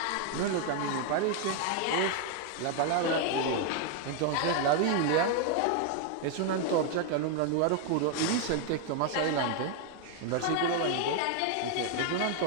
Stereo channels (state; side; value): different; both; correlation 0.00